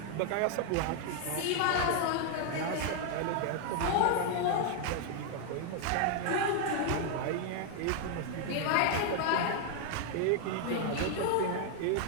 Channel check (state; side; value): different; both; correlation 0.00